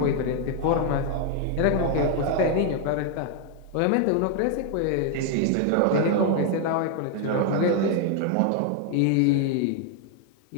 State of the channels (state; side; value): different; both; correlation 0.00